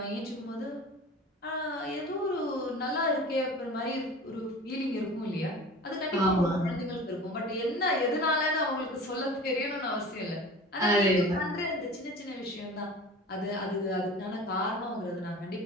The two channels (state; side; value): normal; both; correlation 0.39